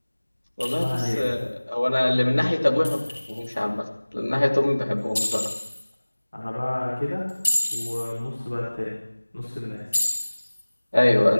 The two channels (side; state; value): both; inverted; correlation -1.00